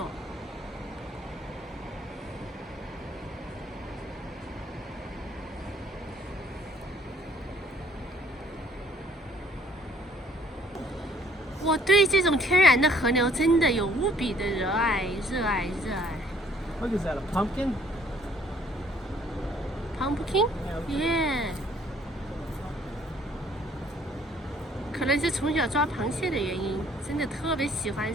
我对这种天然的河流真的有无比的热爱。What is that? A pumpkin? Pumpkin? Yeah. 可能是从小抓螃蟹的原因，真的特别喜欢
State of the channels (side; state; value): both; normal; correlation 0.61